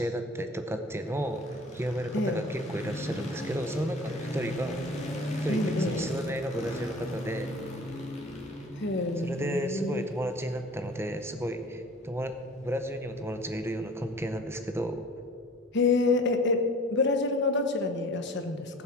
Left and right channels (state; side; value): normal; both; correlation 0.46